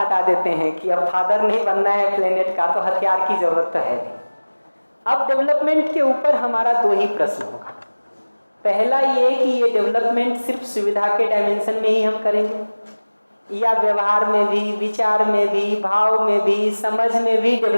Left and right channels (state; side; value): inverted; both; correlation -1.00